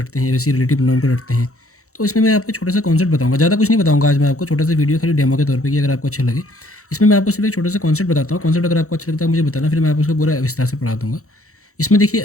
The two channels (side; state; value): right; late; 0.64 ms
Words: हैं, वैसे रिलेटिव प्रोनाउन को रटते हैं। तो इसमें मैं आपको छोटा सा कॉन्सेप्ट बताऊँगा, ज़्यादा कुछ नहीं बताऊँगा आज मैं आपको, छोटा सा वीडियो खाली डेमो के तौर पे कि अगर आपको अच्छा लगे। इसमें मैं आपको सिर्फ एक छोटा सा कॉन्सेप्ट बताता हूँ। कॉन्सेप्ट अगर आपको अच्छा लगता है मुझे बताना, फिर मैं आपको उसको पूरा विस्तार से पढ़ा दूँगा। इसमें देखिए,